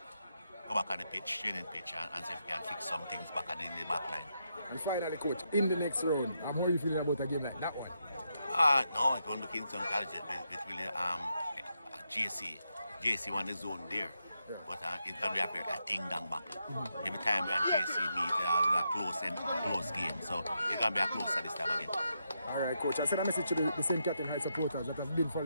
go back on the pitch, training pitch, and see if we can fix some things back in the back line. And finally, Coach, in the next round, how are you feeling about a game like that one? No, it won't look into College. It really JC won the zone there. Yeah. But it's going to be a ding-dong battle. Every time we and JC meet, a close game. So it's going to be a closer this time again. All right, Coach. I send a message to the St. Catherine High supporters that have been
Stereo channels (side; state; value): both; inverted; correlation -0.82